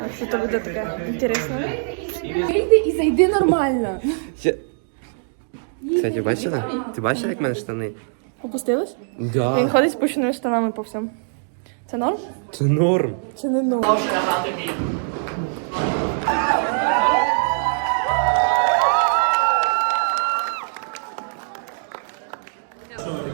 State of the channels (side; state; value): left; silent; digital silence